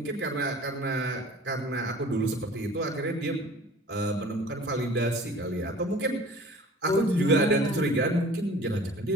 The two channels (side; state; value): both; normal; correlation 0.45